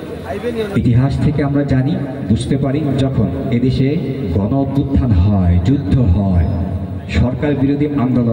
ইতিহাস থেকে আমরা জানি, বুঝতে পারি, যখন এদেশে গণ অভ্যুত্থান হয়, যুদ্ধ হয়, সরকার বিরোধী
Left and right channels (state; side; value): identical; both; correlation 1.00